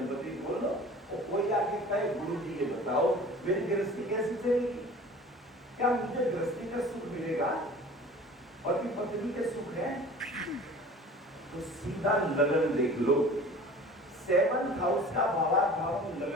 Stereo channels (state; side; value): normal; both; correlation 0.43